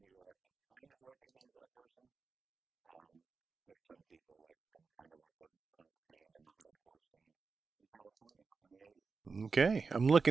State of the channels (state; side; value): quieter; left; 4.7 dB